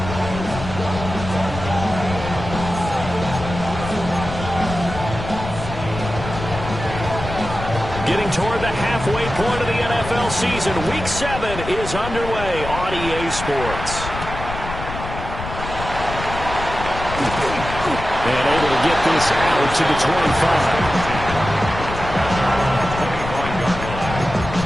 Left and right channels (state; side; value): noise; left; rumble, 8 dB below the sound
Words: Getting toward the halfway point of the NFL season, Week 7 is underway on EA Sports. And able to get this out to the 25.